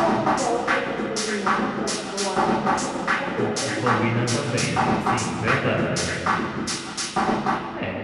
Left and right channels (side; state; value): both; identical; correlation 1.00